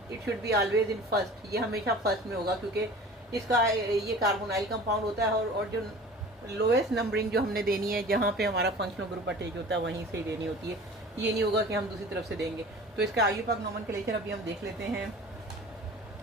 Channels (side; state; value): both; normal; correlation 0.42